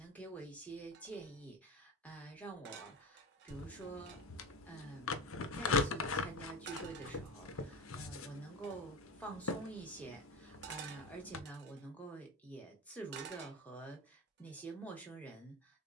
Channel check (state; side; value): normal; both; correlation 0.25